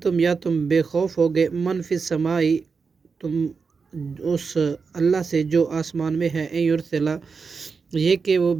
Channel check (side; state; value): left; quieter; 5.1 dB